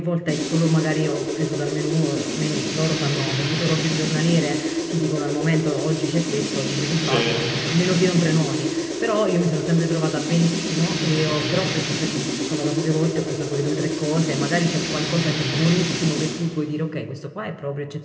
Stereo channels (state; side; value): identical; both; correlation 1.00